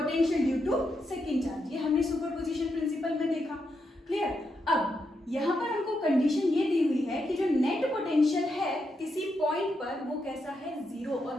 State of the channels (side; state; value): both; normal; correlation 0.83